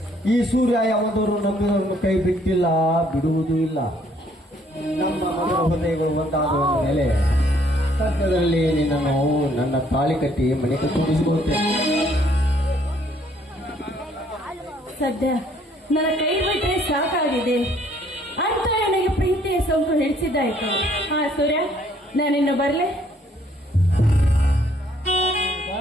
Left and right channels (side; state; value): both; normal; correlation 0.64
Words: ಈ ಸೂರ್ಯ ಯಾವದವರು ನಂಬಿದವರನ್ನು ಕೈ ಬಿಟ್ಟಿಲ್ಲ, ಬಿಡುವುದೂ ಇಲ್ಲ. ನಮ್ಮ ಮಗಳ ಹೃದಯಗಳು ಒಂದಾದ ಮೇಲೆ ಸದ್ಯದಲ್ಲಿ ನಿನ್ನನ್ನು ನನ್ನ ತಾಳಿ ಕಟ್ಟಿ ಮನೆಗೆ ತುಂಬಿಸಿಕೊಳ್ಳುತ್ತೇನೆ. ಸದ್ಯ ನನ್ನ ಕೈ ಬಿಟ್ಟರೆ ಸಾಕಾಗಿದೆ ಅಂತ ನನಗೆ ಪ್ರೀತಿಯ ಸೋಂಕು ಹಿಡಿಸಿದ್ದಾಯ್ತು. ಹಾ ಸೂರ್ಯ, ನಾನಿನ್ನು ಬರ್ಲೆ?